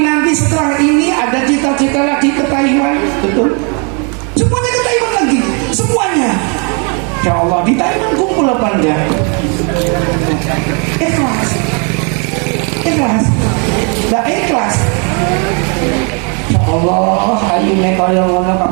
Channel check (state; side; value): quieter; left; 36.0 dB